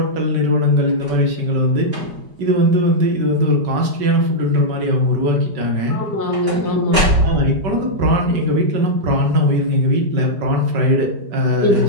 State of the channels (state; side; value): late; left; 4.9 ms